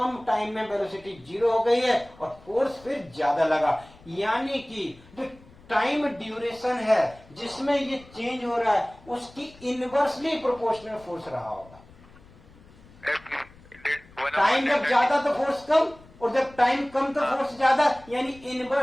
टाइम में वेलोसिटी 0 हो गई है और फोर्स फिर ज्यादा लगा। यानी कि जो टाइम ड्यूरेशन है जिसमें ये चेंज हो रहा है उसकी इनवर्सली प्रोपोर्शनल फोर्स रहा होगा। टाइम जब ज्यादा तो फोर्स कम, और जब टाइम कम तो फोर्स ज्यादा, यानी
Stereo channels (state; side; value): noise; left; rumble, 24 dB below the sound